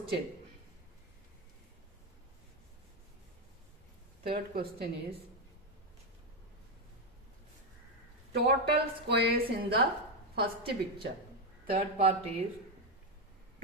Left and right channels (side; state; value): both; normal; correlation 0.07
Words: Third question is total squares in the first picture. Third part is